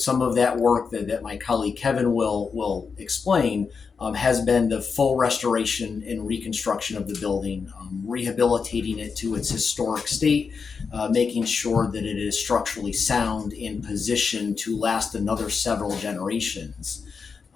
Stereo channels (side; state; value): right; quieter; 5.5 dB